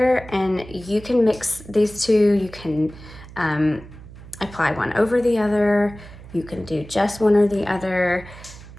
and you can mix these two. You can apply one over the other. You can do just one or the other.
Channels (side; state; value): right; noise; hum, 17 dB below the sound